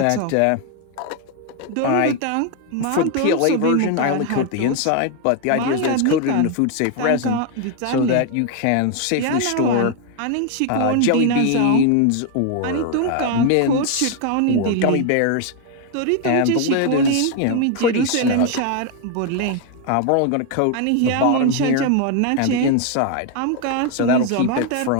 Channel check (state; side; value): different; both; correlation 0.01